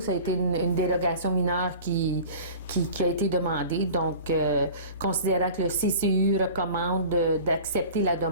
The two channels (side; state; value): both; inverted; correlation -0.40